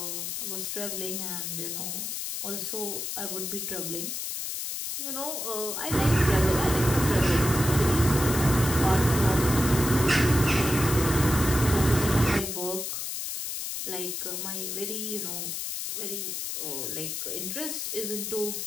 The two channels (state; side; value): noise; left; hiss, 4 dB below the sound